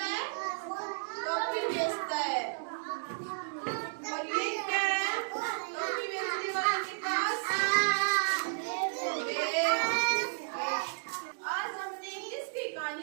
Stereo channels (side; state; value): left; silent; digital silence